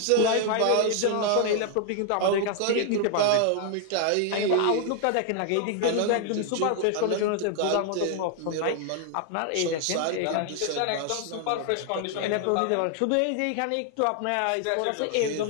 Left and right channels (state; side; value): different; both; correlation 0.00